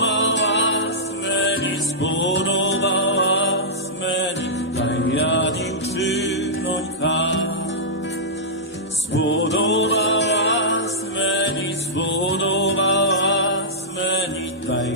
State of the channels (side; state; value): both; normal; correlation -0.13